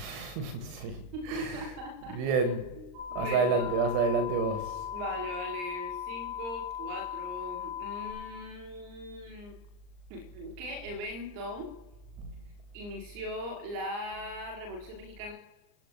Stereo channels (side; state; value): left; late; 39 ms